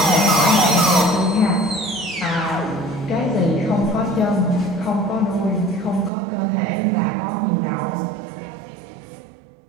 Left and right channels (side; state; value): left; drops out; at 6.1 s